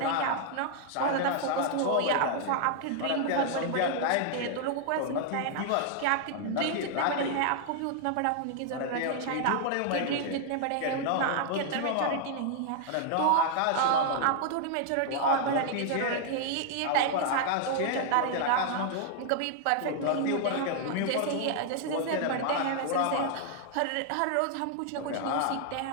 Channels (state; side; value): different; both; correlation -0.01